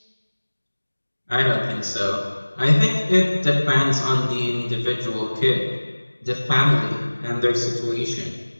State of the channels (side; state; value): both; inverted; correlation -1.00